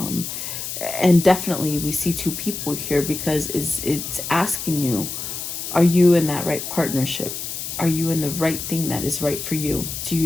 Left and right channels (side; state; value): left; noise; hiss, 6 dB below the sound